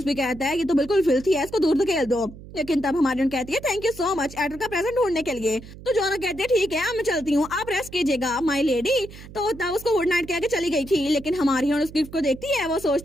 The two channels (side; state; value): right; noise; hum, 16 dB below the sound